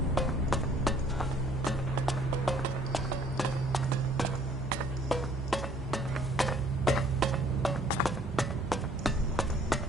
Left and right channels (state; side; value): normal; both; correlation 0.58